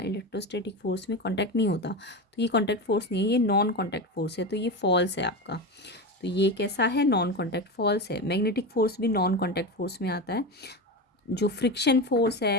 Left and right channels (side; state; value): both; normal; correlation 0.21